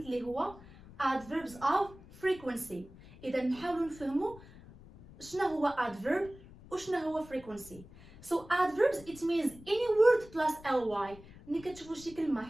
اللي هو adverbs of frequency. إذا نحاولوا نفهموا شنو هو adverb وشنو هو frequency. So adverbs it means any word plus ly. ملي كتشوفوا شي كلمة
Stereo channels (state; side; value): noise; left; rumble, 20 dB below the sound